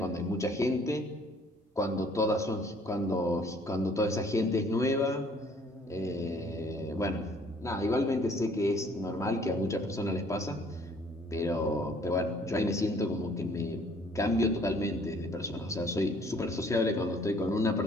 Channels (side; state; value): both; normal; correlation 0.59